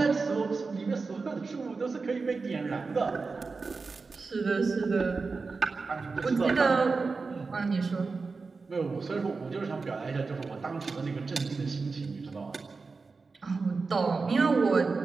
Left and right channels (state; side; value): quieter; left; 4.3 dB